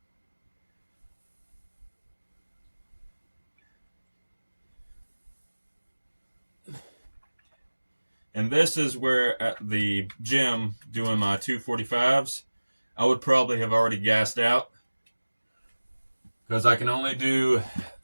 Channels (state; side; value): inverted; both; correlation -1.00